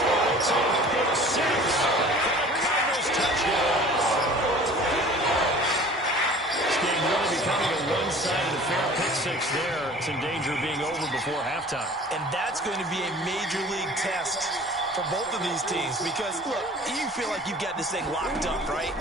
It's a pick six for the Cardinals touchdown. This game really becoming a one-sided affair. Pick six there. It's in danger of being over before halftime. And that's going to be a major league test for both of these teams because, look, you feel like you've got this thing locked up, right?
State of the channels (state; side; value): normal; both; correlation 0.46